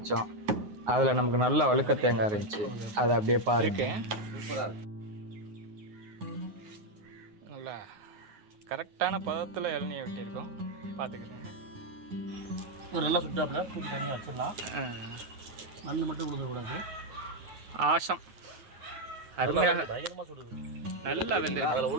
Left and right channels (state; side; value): late; left; 9.5 ms